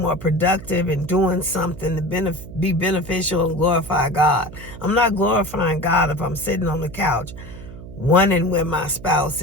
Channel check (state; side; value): noise; right; hum, 14 dB below the sound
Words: productive and doing something to be beneficial and glorify God. I'm not glorifying God if I'm sitting on the couch wondering where my spouse